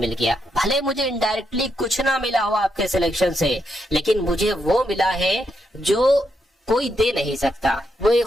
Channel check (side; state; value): both; normal; correlation 0.81